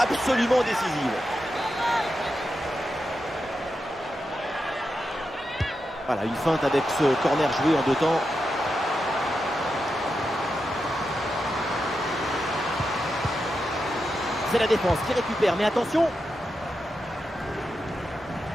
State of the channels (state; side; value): normal; both; correlation 0.88